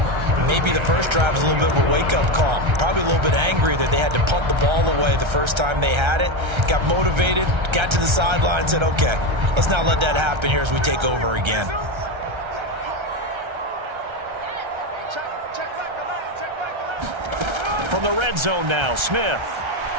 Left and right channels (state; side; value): late; left; 1.3 ms